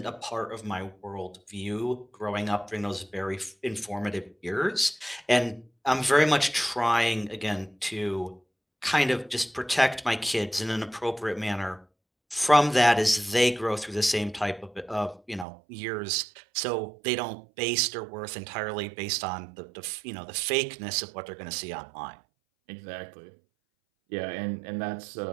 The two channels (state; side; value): drops out; left; at 15.5 s